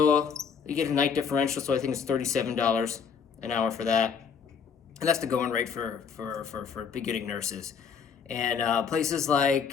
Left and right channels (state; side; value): quieter; right; 6.5 dB